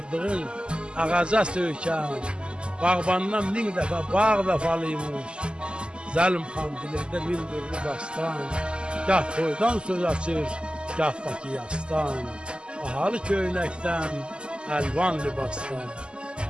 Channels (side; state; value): left; late; 0.050 ms